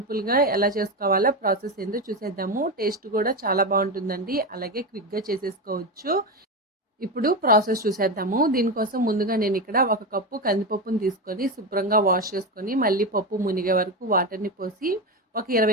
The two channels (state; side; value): normal; both; correlation 0.16